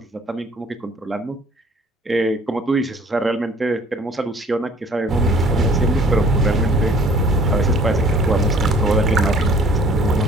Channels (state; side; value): normal; both; correlation 0.54